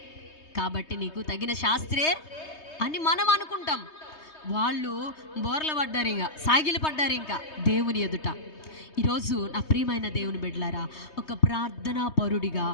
కాబట్టి నీకు తగిన శాస్త్రే అని మనం అనుకుంటాం. వాళ్ళు బోర్ల పడ్డారు, ఇంకా సాగిలి పడ్డారు ఇంకా దేవుని ఎదుట. ఈరోజు నా ప్రియమైన దేవుని బిడ్డలారా, ఒక ప్రార్థనా పరుడిగా,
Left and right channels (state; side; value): late; right; 3.2 ms